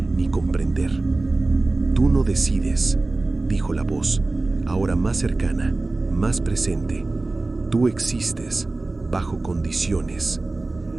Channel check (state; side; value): quieter; left; 3.2 dB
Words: comprender. «Tú no decides», dijo la voz, ahora más cercana, más presente. «Tú existes, bajo condiciones».